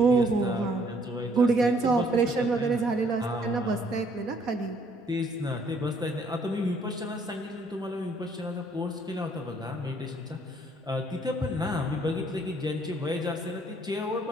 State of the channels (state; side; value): normal; both; correlation 0.64